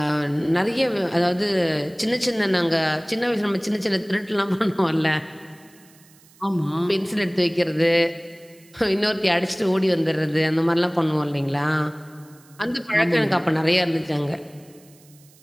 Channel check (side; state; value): right; noise; hiss, 28 dB below the sound